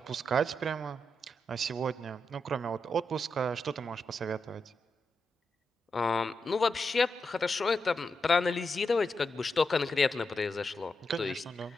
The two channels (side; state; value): both; normal; correlation 0.85